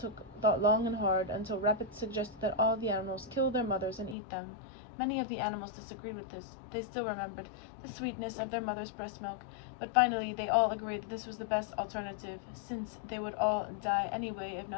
thought long and hard until Rabbit suggested that all the animals kill their mothers and eat them. Many of the animals disagreed with this. They still remembered the sweetness of their mother's breast milk, but finally they all agreed that this was the best alternative, since they would all die anyway if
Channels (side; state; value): right; drops out; at 4.2 s